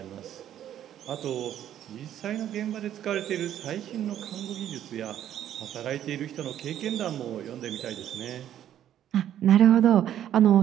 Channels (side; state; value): left; quieter; 11.0 dB